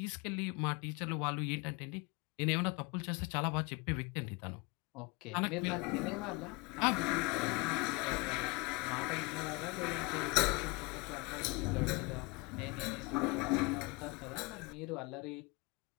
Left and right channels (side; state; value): right; quieter; 26.4 dB